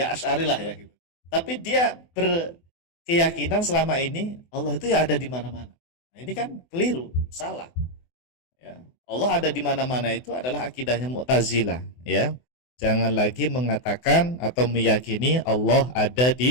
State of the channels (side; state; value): right; late; 24 ms